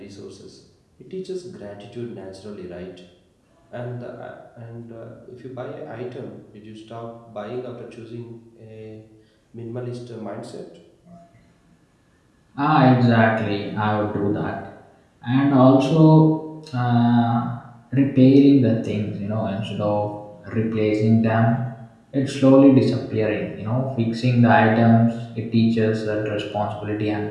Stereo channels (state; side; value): identical; both; correlation 1.00